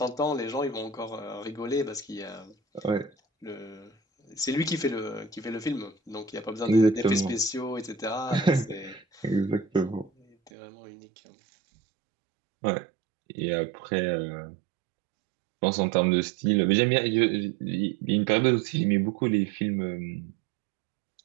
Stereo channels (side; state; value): left; drops out; at 10.5 s